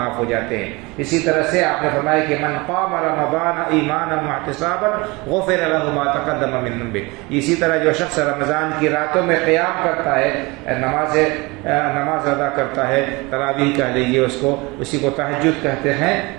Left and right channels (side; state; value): left; quieter; 24.8 dB